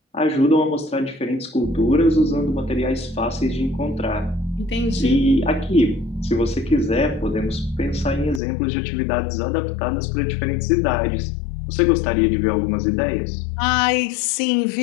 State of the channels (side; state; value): right; drops out; at 8.4 s